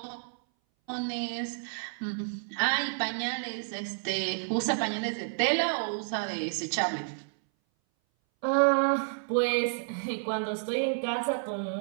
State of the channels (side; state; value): left; silent; 58 dB below the other